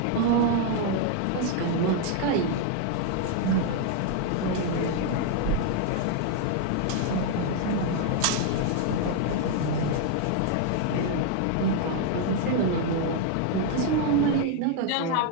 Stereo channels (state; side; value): different; both; correlation 0.00